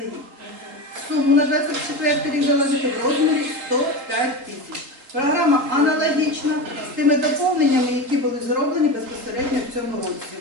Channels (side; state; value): left; late; 3.7 ms